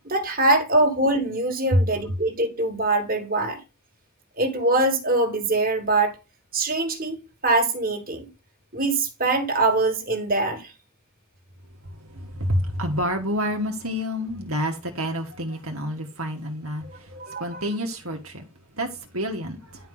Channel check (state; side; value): normal; both; correlation -0.06